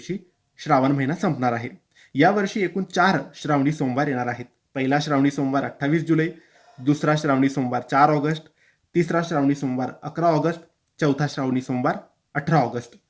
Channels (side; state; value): both; identical; correlation 1.00